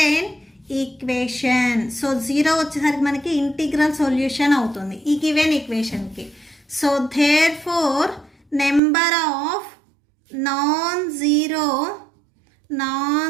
equation. So 0 వచ్చేసరికి మనకి ఇంటిగ్రల్ సొల్యూషన్ అవుతుంది ఈ గివెన్ ఈక్వేషన్కి. So therefore number of non zero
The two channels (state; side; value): drops out; left; at 8.8 s